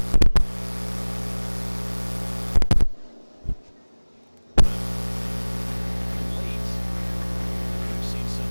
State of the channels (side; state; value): both; inverted; correlation -1.00